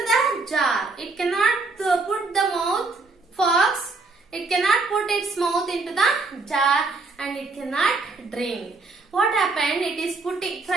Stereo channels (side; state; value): left; quieter; 3.7 dB